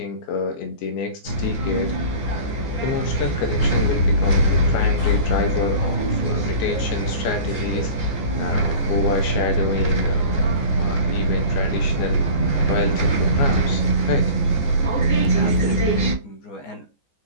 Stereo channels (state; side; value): late; right; 14 ms